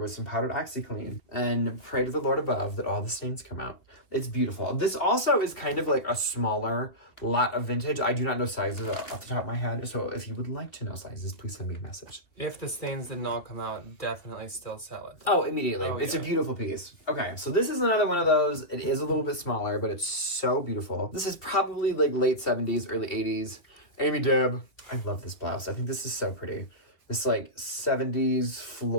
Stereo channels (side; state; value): right; late; 2.7 ms